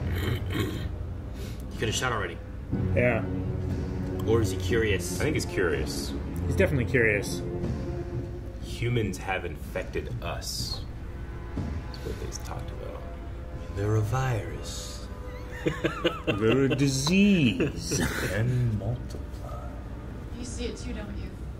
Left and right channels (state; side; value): identical; both; correlation 1.00